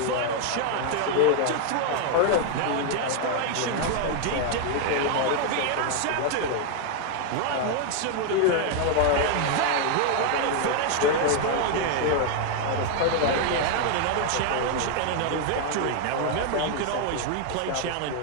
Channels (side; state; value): both; different; correlation 0.01